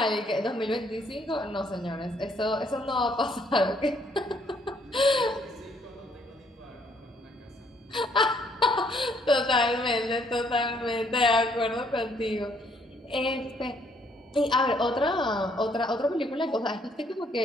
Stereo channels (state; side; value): normal; both; correlation 0.67